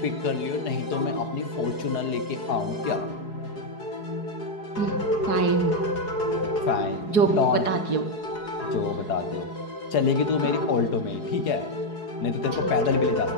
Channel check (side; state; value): right; late; 4.8 ms